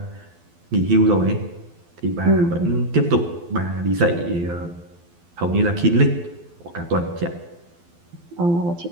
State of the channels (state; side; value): late; left; 12 ms